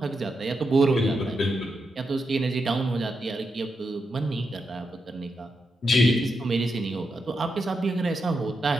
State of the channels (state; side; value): normal; both; correlation 0.85